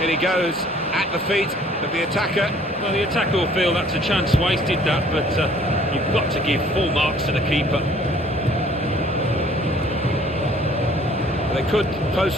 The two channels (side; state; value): both; normal; correlation 0.56